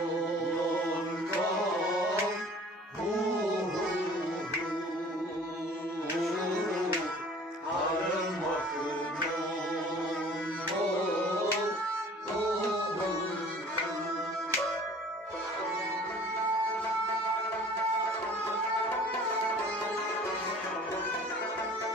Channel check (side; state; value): both; normal; correlation 0.49